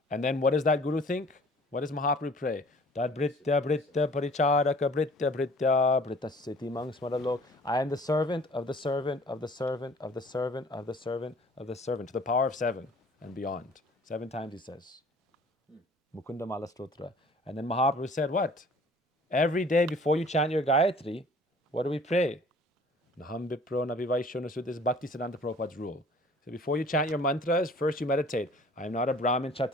And then what does that guru think? What does Mahaprabhu pray? Tad britya britya paricharaka britya britya britasiti mang smaralok. I am the servant of the servant of the servant of the servant of the servant of the servant, to the power of 7 and beyond. 7 times he says. Mukunda Mala Stotra. And then Mahaprabhu said what? Every day before you chant your Gayatri, what do we pray? Naham Vipro Nabivaisho Nasud. This is Bhaktisiddhanta Prabhupada's rule. So before you chant your mantras, first you meditate. I am not a Brahmin,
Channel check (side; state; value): both; normal; correlation 0.51